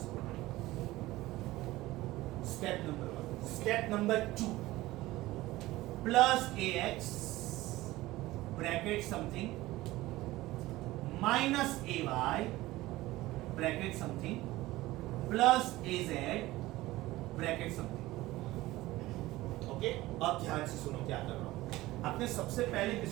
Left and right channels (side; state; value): left; quieter; 17.9 dB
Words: मिलेगा। Step number 1। Step number 2 +ax bracket something -ay bracket something +az bracket something. Okay अब ध्यान से सुनो क्या कर रहा हूं। आपने सबसे पहले